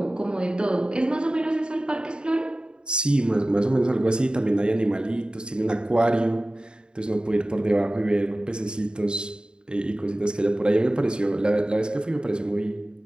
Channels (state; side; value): late; left; 0.050 ms